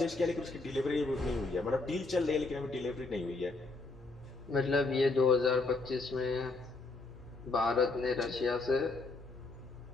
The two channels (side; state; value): right; quieter; 3.4 dB